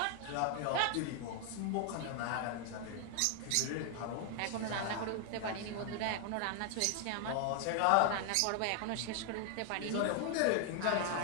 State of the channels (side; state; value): both; different; correlation 0.00